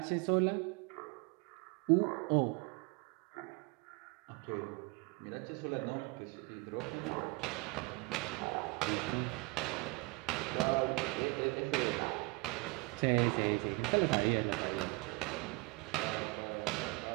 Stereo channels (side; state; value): left; quieter; 27.1 dB